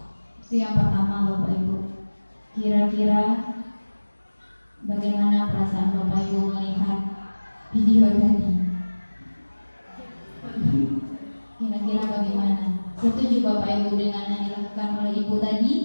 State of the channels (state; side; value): inverted; both; correlation -1.00